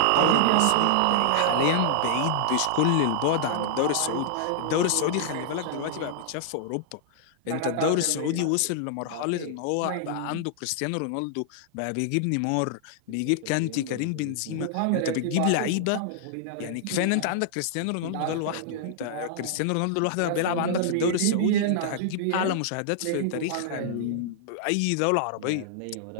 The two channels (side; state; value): both; different; correlation -0.01